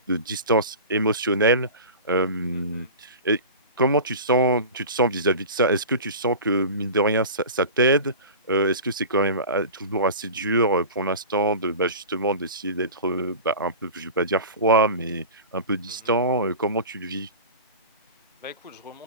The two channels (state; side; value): inverted; both; correlation -0.34